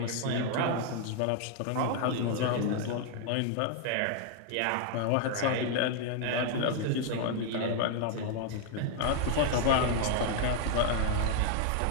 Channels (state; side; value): different; both; correlation 0.00